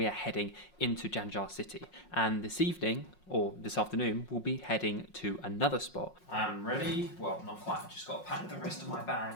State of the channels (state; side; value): late; right; 5.5 ms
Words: are heading into Zhangjiajie city. And this evening, or this afternoon, we'll be heading to another spot. I'm ready. Well, not quite. I've just got to pack the rest of my